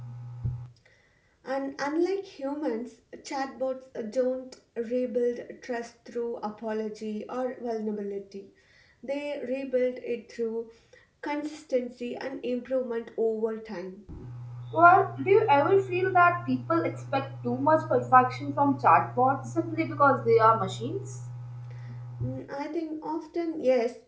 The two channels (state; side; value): identical; both; correlation 1.00